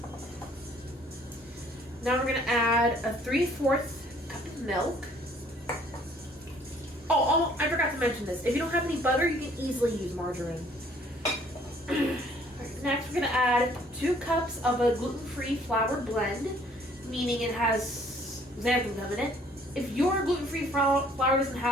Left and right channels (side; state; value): both; normal; correlation 0.59